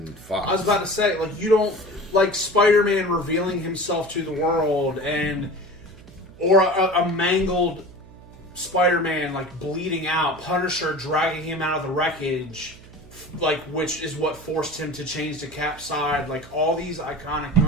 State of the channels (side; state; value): right; noise; hum, 21 dB below the sound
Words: Fox. I was about to say, like, you don't like Spider-Man revealing himself to the world, or a mangled Spider-Man like bleeding out, Punisher dragging him out of the wreckage, like, which is what forced him to change to Cap's side. Like, all these iconic